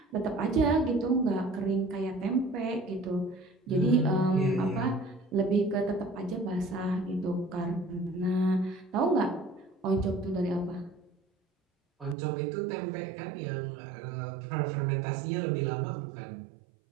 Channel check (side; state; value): left; drops out; at 12.2 s